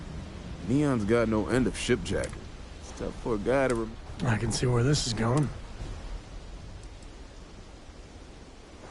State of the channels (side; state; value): both; identical; correlation 1.00